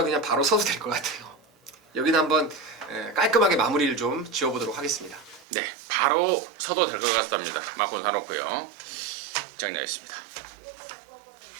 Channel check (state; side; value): drops out; left; at 5.5 s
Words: 그냥 바로 서도 될 것 같아요. 여기는 한번 깔끔하게 마무리를 좀 지어보도록 하겠습니다. 네, 바로 서도 될 것 같답니다. 마콘 사놓고요. 정리하겠습니다.